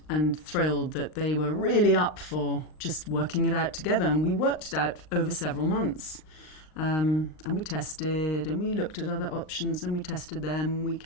thrilled that they were really up for just working it out together, and we worked it out over several months. And we tested, and we looked at other options, and we tested them. We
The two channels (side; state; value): right; late; 39 ms